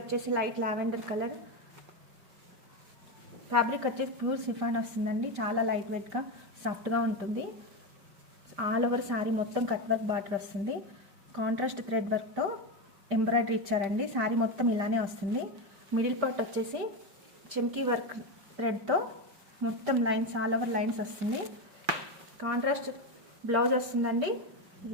లైట్ లావెండర్ కలర్, ఫ్యాబ్రిక్ వచ్చేసి ప్యూర్ సిఫాన్ వస్తుందండి. చాలా లైట్ వెయిట్గా సాఫ్ట్గా ఉంటుంది. ఆల్ ఓవర్ సారీ మొత్తం కట్ వర్క్ బార్డర్ వస్తుంది. కాంట్రాస్ట్ థ్రెడ్ వర్క్తో ఎంబ్రాయిడరీ ఇచ్చారండి. సారీ మొత్తం ఇలానే వస్తుంది. మిడిల్ పార్ట్ వచ్చేసి చెమ్కీ వర్క్ థ్రెడ్తో మొత్తం లైన్స్ ఆల్ ఓవర్ లైన్స్ వస్తుంది. కాంట్రాస్ట్ బ్లౌజ్ వస్తుందండి.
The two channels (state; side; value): late; left; 5.0 ms